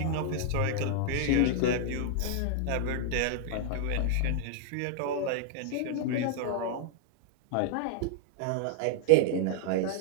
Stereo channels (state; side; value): different; both; correlation 0.00